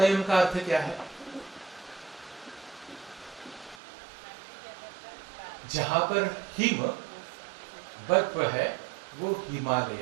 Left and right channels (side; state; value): left; drops out; at 3.8 s